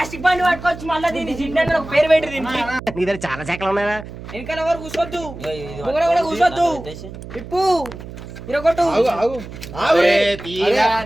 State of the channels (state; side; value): noise; right; hum, 13 dB below the sound